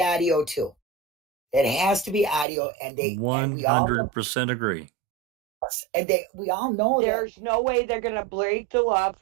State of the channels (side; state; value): left; drops out; at 2.5 s